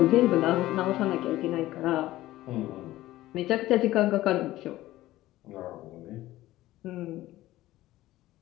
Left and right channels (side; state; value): right; quieter; 16.0 dB